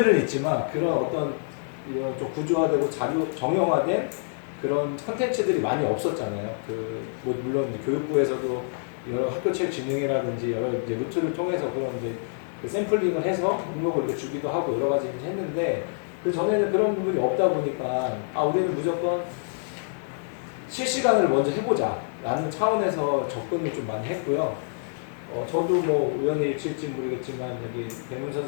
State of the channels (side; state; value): right; silent; digital silence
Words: 있지만 그런 어떤 이런 좀 구조화되고 자료 정형화된 그런 컨텐츠들이 많이 없었잖아요. 뭐 물론 교육부에서도 여러 학교체육진흥회라든지 여러 이제 루트를 통해서 그런 이제 그 샘플링을 해서 목록을 이렇게 주기도 하고 여러 가지 했는데 그 전에는 그런 부분이 없다 보니까 우리는 무조건 실시간을 먼저 해보자 라는 차원에서 접근을 좀 많이 했고요. 저도 뭐 우연히 일치일지 모르겠지만 여기 배문